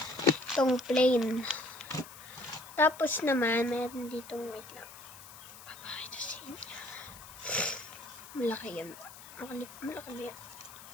Itong plain. Tapos naman, meron ditong, wait lang, papakita sa inyo. Malaki yan. Malaki yan.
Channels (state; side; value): noise; left; hiss, 17 dB below the sound